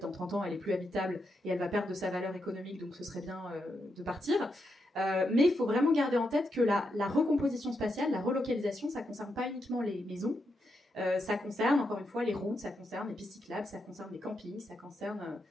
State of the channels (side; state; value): both; normal; correlation 0.83